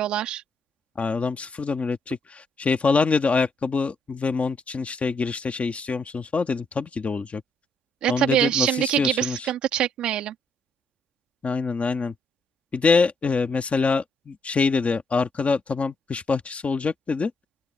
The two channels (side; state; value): both; normal; correlation 0.73